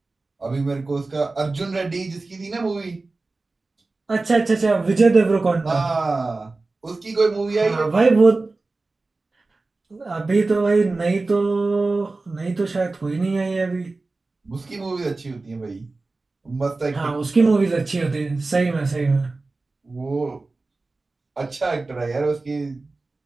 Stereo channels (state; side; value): quieter; left; 3.5 dB